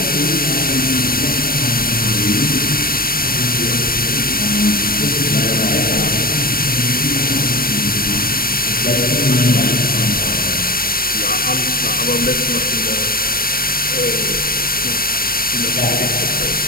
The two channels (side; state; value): right; late; 0.43 ms